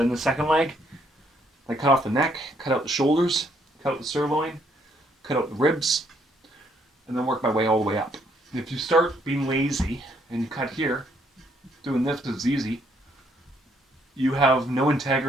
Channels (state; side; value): normal; both; correlation 0.70